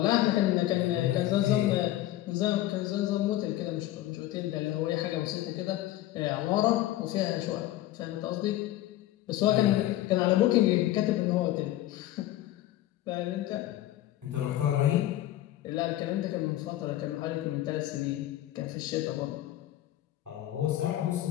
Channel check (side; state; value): right; quieter; 14.6 dB